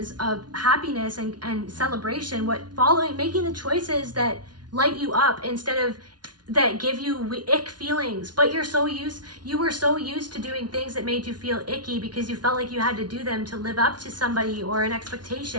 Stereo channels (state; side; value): late; left; 0.70 ms